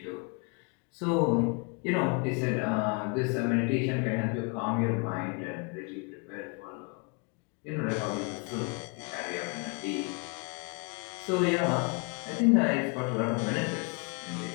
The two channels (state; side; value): quieter; right; 34.1 dB